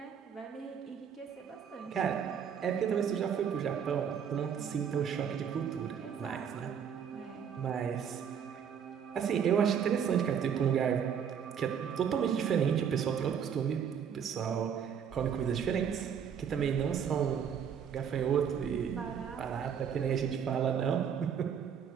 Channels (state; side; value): quieter; left; 7.8 dB